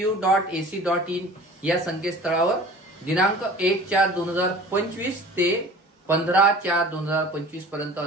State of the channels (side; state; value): both; normal; correlation 0.43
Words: या संकेतस्थळावर दिनांक 1/4/2025 ते 15/4/2025 पर्यंत